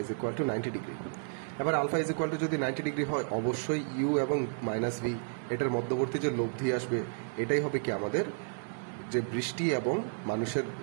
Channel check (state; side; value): silent; left; digital silence